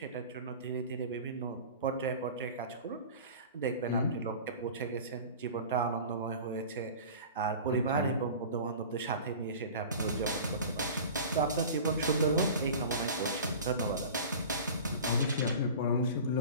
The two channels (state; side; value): inverted; both; correlation -0.37